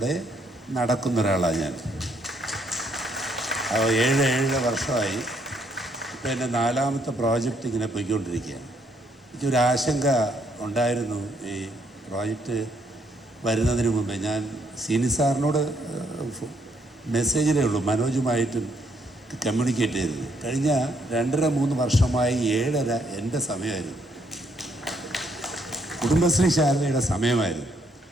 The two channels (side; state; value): both; normal; correlation 0.71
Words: നടക്കുന്ന ഒരാളാണ് ഞാൻ. 7 വർഷമായി. ഇപ്പോൾ എൻ്റെ 4ാമത്തെ പ്രോജക്റ്റ് ഇങ്ങനെ പോയിക്കൊണ്ടിരിക്കുകയാണ്. എനിക്കൊരു ആശങ്ക ഉണ്ടായിരുന്നു ഈ പ്രോജക്റ്റ് വരുന്നതിന് മുമ്പേ. ഞാൻ സീനി സാറിനോട് മെസ്സേജിലേ ഉള്ളൂ, മനോജുമായിട്ടും കമ്മ്യൂണിക്കേറ്റ് ചെയ്തത്. കഴിഞ്ഞ 2.5-3 വർഷമായി 7.5 എൻ്റെ സമയമായിരുന്നു, കുടുംബശ്രീ ശാലയുടെ സമയമായിരുന്നു.